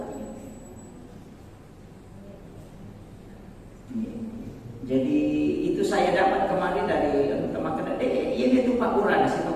Jadi itu saya dapat kemarin dari teman-teman. Ini tu Pak Uran, siapa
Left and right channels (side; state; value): both; identical; correlation 1.00